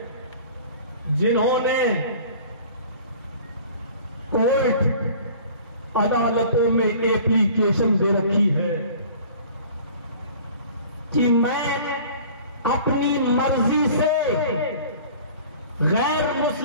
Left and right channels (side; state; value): both; inverted; correlation -0.46